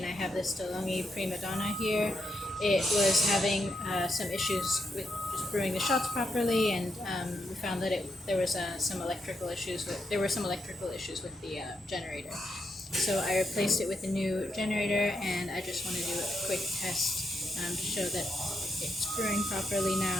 I have this DeLonghi primadonna here. It was having some issues with just brewing the shots properly, and we found that there were some electrical issues with the generator. So I replaced it with a new generator, and I just want to do a quick test to show that it's brewing properly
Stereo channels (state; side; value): normal; both; correlation 0.82